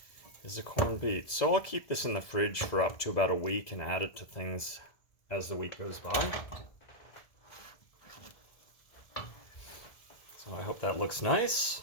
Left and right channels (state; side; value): late; right; 2.0 ms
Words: is a corned beet. So I'll keep this in the fridge for up to about a week and add it to things as the week goes by. So I hope that looks nice.